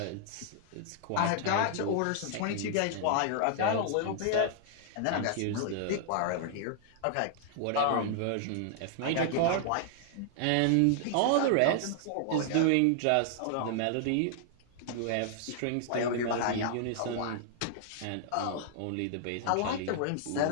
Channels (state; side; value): different; both; correlation -0.01